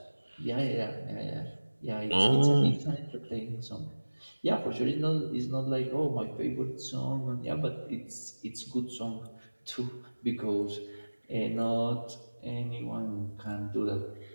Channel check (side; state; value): both; inverted; correlation -1.00